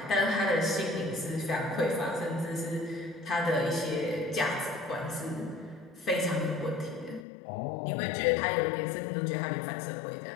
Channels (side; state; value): right; drops out; at 7.2 s